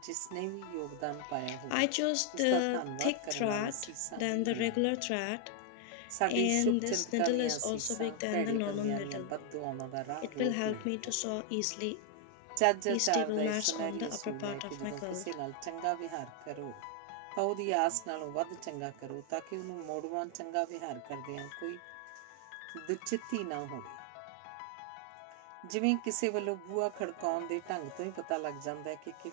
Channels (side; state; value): both; different; correlation 0.00